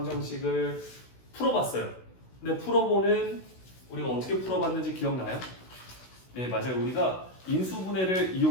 풀어봤어요. 근데 풀어보는 우리가 어떻게 풀어봤는지 기억나요? 네, 맞아요. 우리가 인수분해를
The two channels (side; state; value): right; late; 16 ms